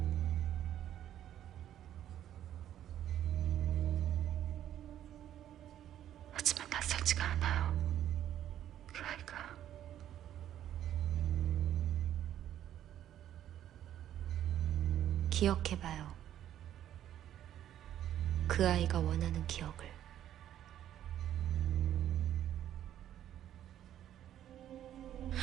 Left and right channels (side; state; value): left; quieter; 11.3 dB